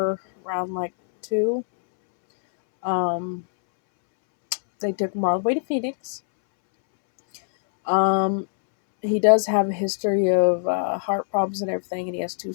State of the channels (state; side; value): silent; right; 64 dB below the other